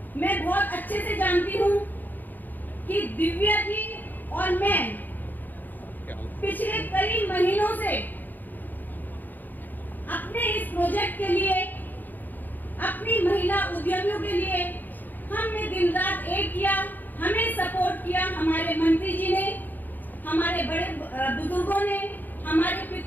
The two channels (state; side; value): late; right; 0.088 ms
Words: मैं बहुत अच्छे से जानती हूँ कि दिव्या जी और मैं पिछले कई महीनों से अपने इस प्रोजेक्ट के लिए, अपनी महिला उद्यमियों के लिए हमने दिन रात एक किया, हमें सपोर्ट किया हमारे मंत्री जी ने, हमारे बड़े बुजुर्गों ने, हमारे